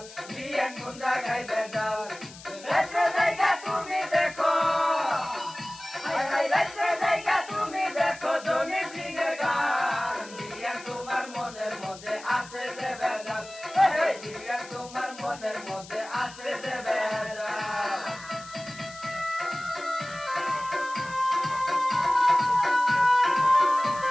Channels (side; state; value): left; noise; hiss, 18 dB below the sound